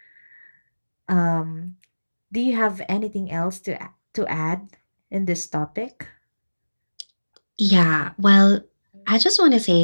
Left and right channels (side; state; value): both; inverted; correlation -1.00